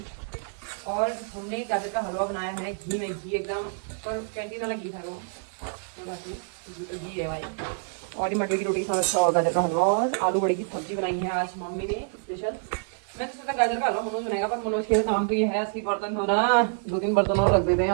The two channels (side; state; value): left; silent; 60 dB below the other